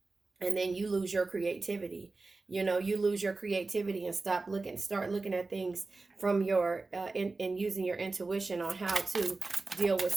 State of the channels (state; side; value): quieter; left; 3.6 dB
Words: And then you lose your creativity. You lose your creativity and start looking at things from your and using your intuition on how to deal with